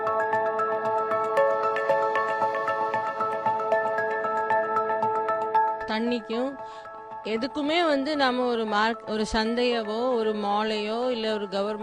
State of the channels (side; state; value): both; identical; correlation 1.00